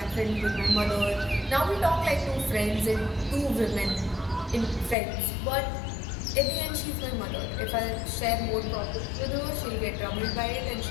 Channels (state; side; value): drops out; right; at 5.0 s